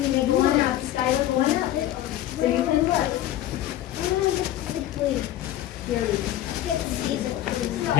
you may go on out, Skylar, go on out. So you can look. Here we go.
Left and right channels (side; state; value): right; quieter; 13.1 dB